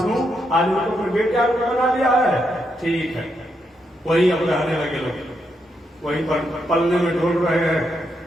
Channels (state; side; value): normal; both; correlation 0.81